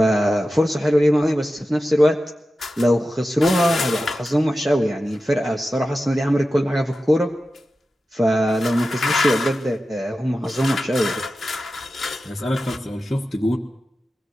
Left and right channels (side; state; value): both; normal; correlation 0.93